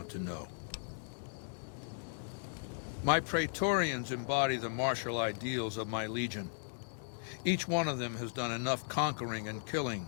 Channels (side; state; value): right; silent; digital silence